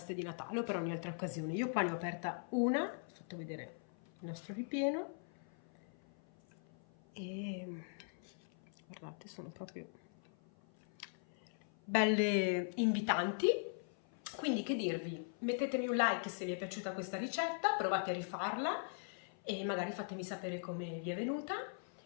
di Natale o per ogni altra occasione. Io qua ne ho aperta una, ho fatto vedere il nostro ripieno e guardate, sono proprio belle invitanti. Quindi che dirvi, mettetemi un like se vi è piaciuta questa ricetta, provate a rifarla e magari fatemi sapere come vi è venuta.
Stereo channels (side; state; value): right; silent; 51 dB below the other